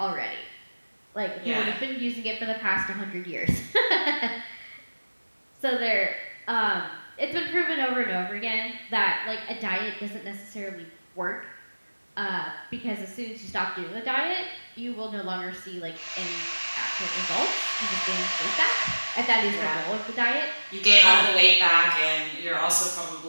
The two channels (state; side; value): inverted; both; correlation -1.00